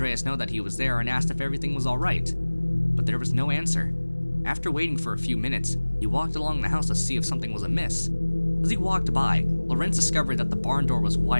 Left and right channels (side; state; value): both; inverted; correlation -1.00